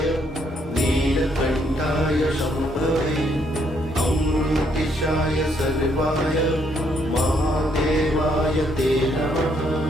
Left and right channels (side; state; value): both; normal; correlation 0.71